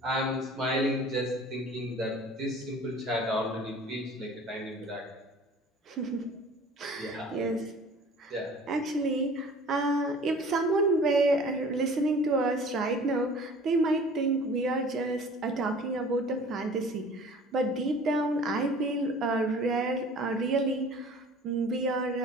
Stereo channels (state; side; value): normal; both; correlation 0.46